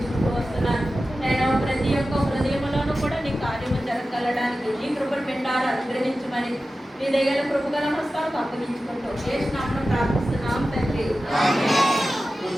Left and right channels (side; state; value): both; normal; correlation 0.94